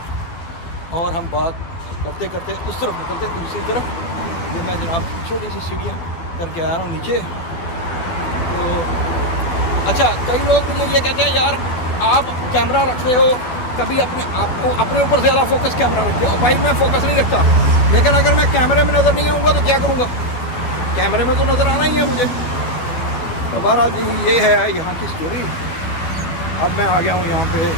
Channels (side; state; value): right; late; 12 ms